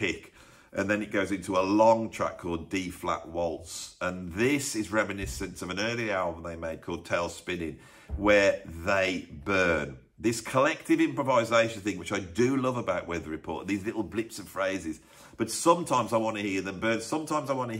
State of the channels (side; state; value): both; identical; correlation 1.00